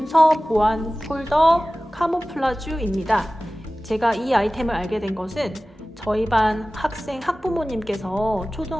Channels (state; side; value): normal; both; correlation 0.97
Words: 보안 폴더 카모플라주입니다. 제가 이 아이템을 알게 된 것은 저희 반 학부모님께서